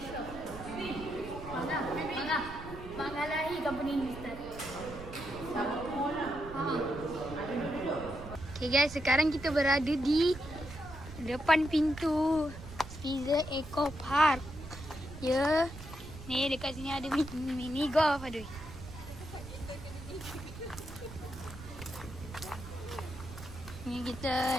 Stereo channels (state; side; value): noise; right; rumble, 13 dB below the sound